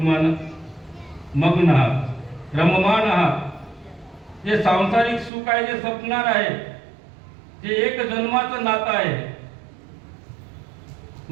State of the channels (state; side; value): drops out; left; at 5.3 s